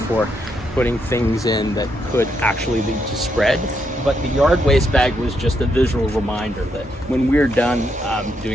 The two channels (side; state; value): both; normal; correlation 0.78